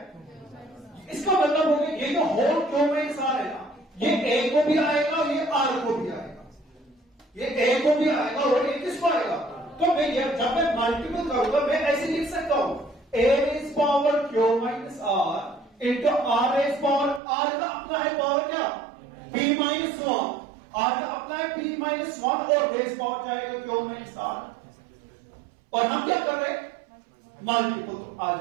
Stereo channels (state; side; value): drops out; left; at 17.2 s